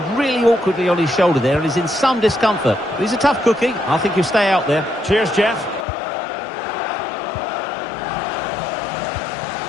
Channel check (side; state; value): right; drops out; at 5.9 s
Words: really awkwardly on his shoulder there and is in some discomfort. But he's a tough cookie. I think he'll stay out there. Cheers, Jeff.